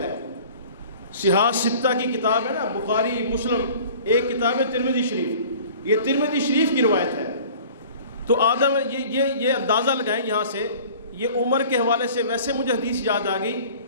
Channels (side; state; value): both; inverted; correlation -0.46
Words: ہے، صحاح ستہ کی کتاب ہے نا، بخاری مسلم ایک کتاب ہے ترمذی شریف، یہ ترمذی شریف کی روایت ہے. تو آدم یہ اندازہ لگائیں یہاں سے، یہ عمر کے حوالے سے ویسے مجھے حدیث یاد آ گئی،